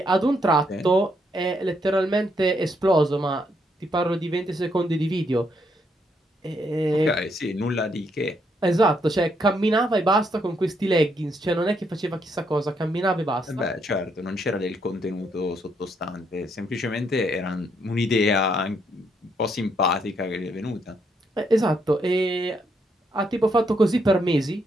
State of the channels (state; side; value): normal; both; correlation 0.75